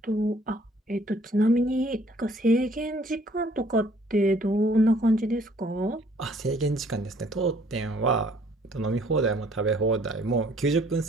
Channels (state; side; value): normal; both; correlation 0.60